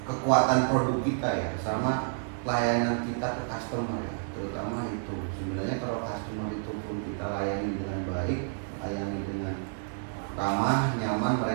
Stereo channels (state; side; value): silent; left; digital silence